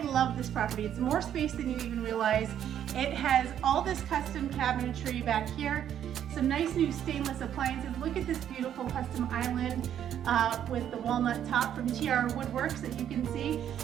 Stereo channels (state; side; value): quieter; left; 10.0 dB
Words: love this property. It's more space than you even realize. It has all this custom cabinetry back here, some nice new stainless appliances. Look at this beautiful custom island with the walnut top from TR Woodworks that you can see.